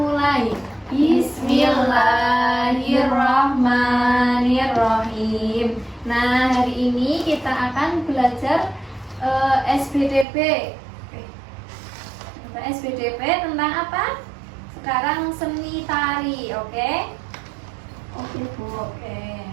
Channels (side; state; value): left; drops out; at 10.2 s